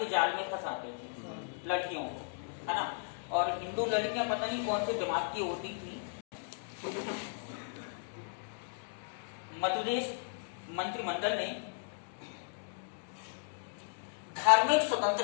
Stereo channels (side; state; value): right; silent; digital silence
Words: जाल में फंसाते थे लड़कियों को, है ना। और हिंदू लड़कियां पता नहीं कौन से दिमाग की होती थी। मध्य प्रदेश मंत्रिमंडल ने धार्मिक